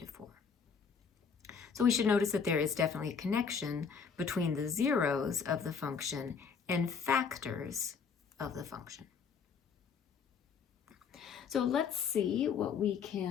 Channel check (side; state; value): right; quieter; 6.1 dB